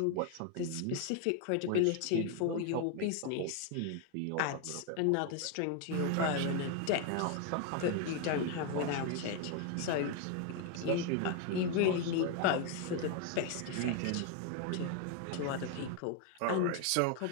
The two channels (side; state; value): both; different; correlation 0.01